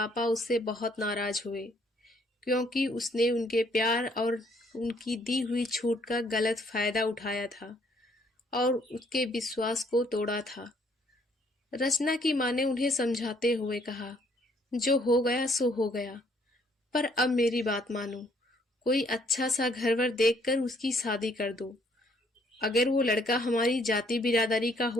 उससे बहुत नाराज हुए, क्योंकि उसने उनके प्यार और उनकी दी हुई छूट का गलत फायदा उठाया था और उसके विश्वास को तोड़ा था। रचना की माँ ने उन्हें समझाते हुए कहा, जो हो गया सो हो गया, पर अब मेरी बात मानो, कोई अच्छा सा घर वर देखकर उसकी शादी कर दो। अगर वो लड़का हमारी जाति बिरादरी का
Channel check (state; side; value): normal; both; correlation 0.65